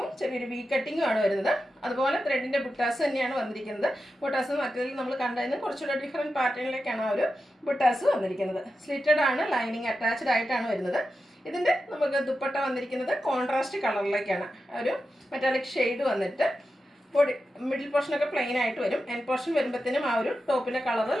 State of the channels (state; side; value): normal; both; correlation 0.90